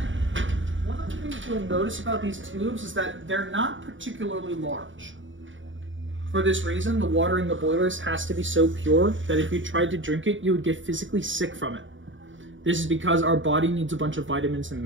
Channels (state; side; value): late; left; 0.56 ms